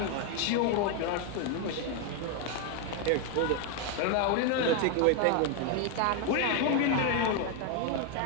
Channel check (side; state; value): both; different; correlation 0.01